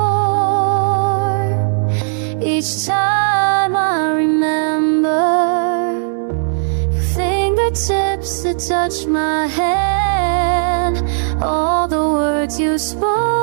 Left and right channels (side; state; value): left; silent; 69 dB below the other